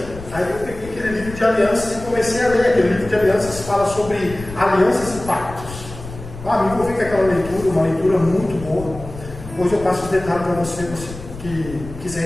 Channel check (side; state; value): left; noise; rumble, 13 dB below the sound